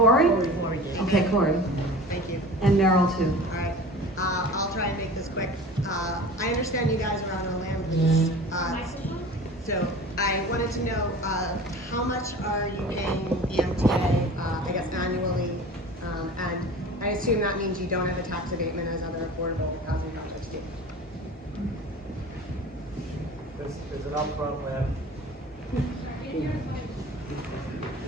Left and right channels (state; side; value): normal; both; correlation 0.39